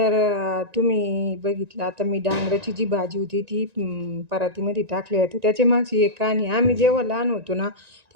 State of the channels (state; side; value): late; left; 1.9 ms